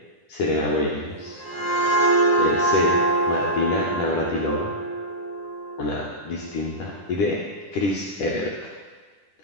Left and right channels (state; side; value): late; right; 10 ms